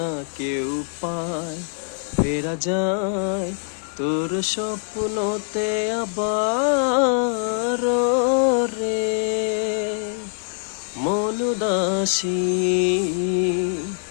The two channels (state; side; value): silent; right; digital silence